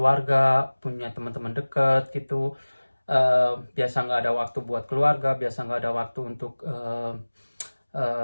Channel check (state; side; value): inverted; both; correlation -1.00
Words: punya teman-teman dekat gitu. Biasa nggak ada waktu buat keluarga, biasa nggak ada waktu untuk